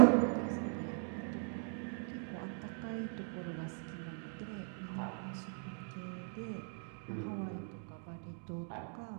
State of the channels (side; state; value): left; silent; 52 dB below the other